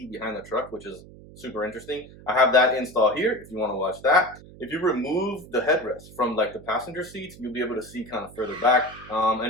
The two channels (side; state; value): right; noise; hum, 19 dB below the sound